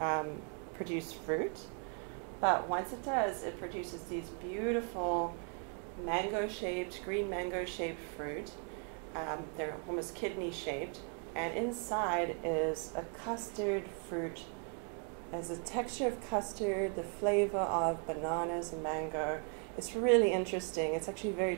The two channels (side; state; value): left; quieter; 38.4 dB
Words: produce fruit, but once it does, it produces these beautiful mango-shaped, green mango-shaped fruit. They're almost kidney-shaped, and inside is a custard fruit. Has a texture of custard, the flavor of bananas and mango. It's really interesting. It's actually very